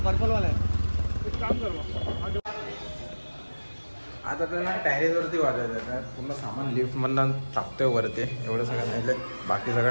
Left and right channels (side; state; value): both; inverted; correlation -1.00